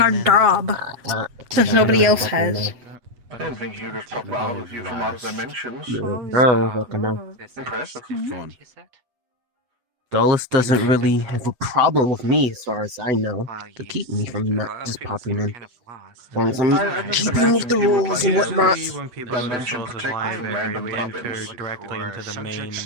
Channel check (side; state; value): left; late; 8.1 ms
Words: our sign in. job. Since nobody else has. I didn't think you could pop out of you from other dimensions. No, fucking no. Impressive. Dolus doesn't really have a problem with me, as far as I know, to keep me from not just popping in. As long as I'm keeping with the rules and whatnot. When people go to Souls' library, we enter directly into the main